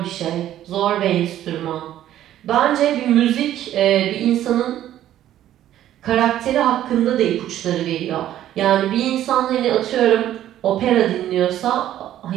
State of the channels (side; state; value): left; quieter; 12.3 dB